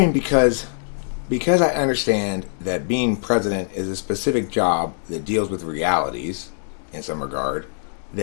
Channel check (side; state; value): right; silent; digital silence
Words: because I understand that being president is a specific job that deals with realities in some regard,